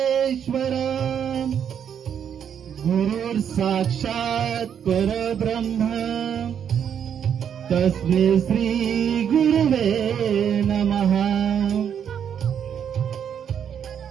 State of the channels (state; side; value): quieter; left; 8.4 dB